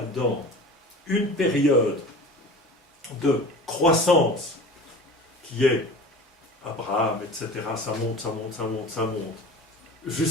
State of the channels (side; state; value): both; normal; correlation 0.38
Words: une période de croissance qui est Abraham, etc. Ça monte,